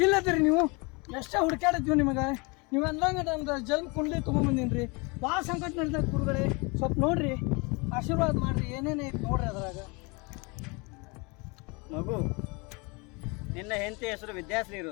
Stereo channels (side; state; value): right; quieter; 29.1 dB